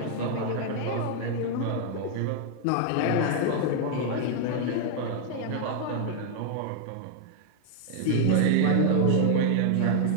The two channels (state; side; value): different; both; correlation 0.00